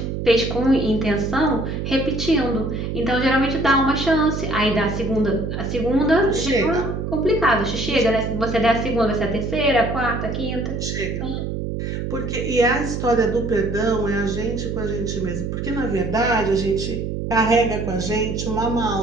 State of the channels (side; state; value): right; noise; hum, 3 dB below the sound